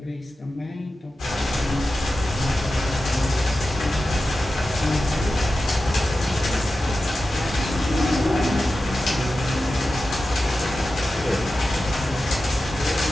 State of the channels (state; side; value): normal; both; correlation 0.93